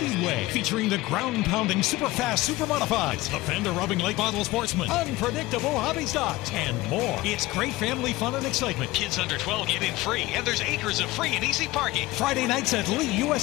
featuring the ground-pounding, super-fast, super-modifieds, the fender-rubbing late model sportsman, unpredictable hobby stocks, and more. It's great family fun and excitement. Kids under 12 get in free, and there's acres of free and easy parking. Friday nights at Lee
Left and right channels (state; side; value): quieter; right; 18.8 dB